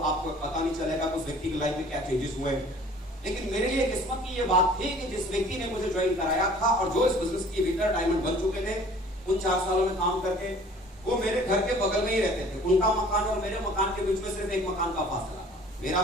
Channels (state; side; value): normal; both; correlation 0.50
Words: आपको पता नहीं चलेगा उस व्यक्ति की लाइफ में क्या चेंजेस हुए। लेकिन मेरे लिए किस्मत की ये बात थी कि जिस व्यक्ति ने मुझे ज्वाइन कराया था और जो इस बिजनेस के भीतर डायमंड बन चुके थे, उन 4 सालों में काम करके, वो मेरे घर के बगल में ही रहते थे। उनका मकान और मेरे मकान के बीच में सिर्फ एक मकान का फासला था।